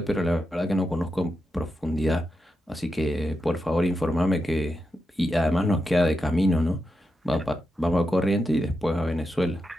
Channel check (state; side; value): normal; both; correlation 0.87